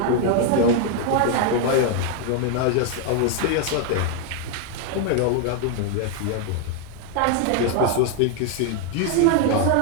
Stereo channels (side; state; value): both; different; correlation 0.00